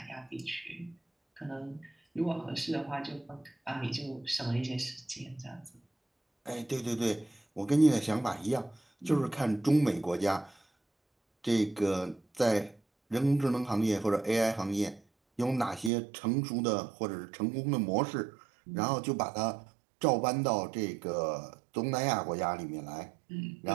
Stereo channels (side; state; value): left; drops out; at 15.9 s